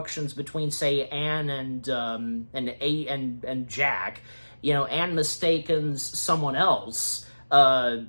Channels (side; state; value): both; inverted; correlation -1.00